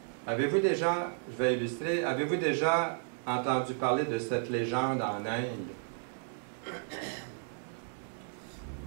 avez-vous déjà, je vais illustrer, avez-vous déjà entendu parler de cette légende en Inde?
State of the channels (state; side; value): silent; left; 56 dB below the other